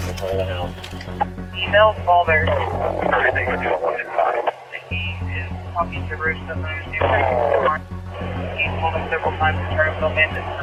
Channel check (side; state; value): both; identical; correlation 1.00